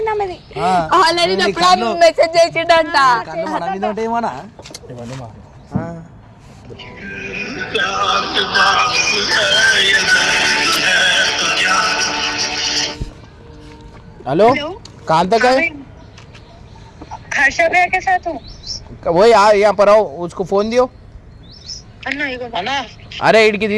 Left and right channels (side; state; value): both; identical; correlation 1.00